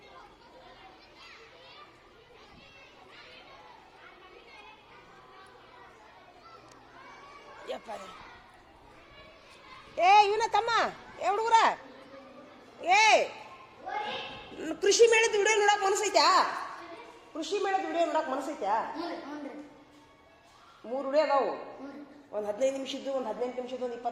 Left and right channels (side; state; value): both; identical; correlation 1.00